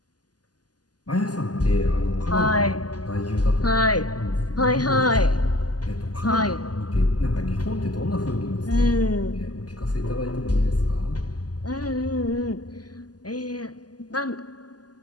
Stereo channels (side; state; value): right; late; 0.69 ms